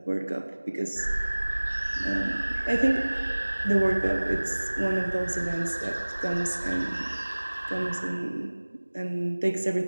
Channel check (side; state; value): both; inverted; correlation -1.00